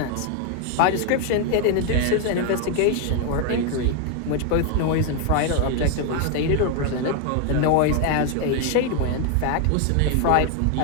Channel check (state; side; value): different; both; correlation 0.01